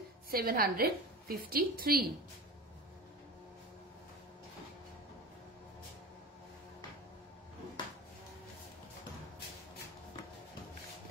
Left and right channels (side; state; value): both; normal; correlation 0.29